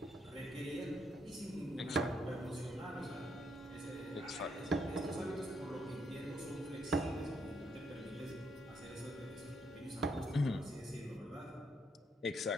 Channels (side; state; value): both; normal; correlation 0.75